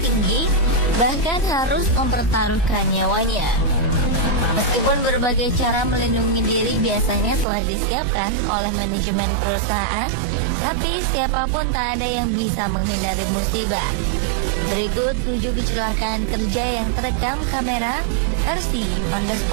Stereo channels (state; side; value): drops out; left; at 7.5 s